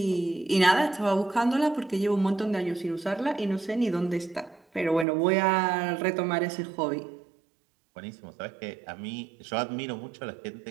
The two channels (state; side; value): drops out; left; at 5.1 s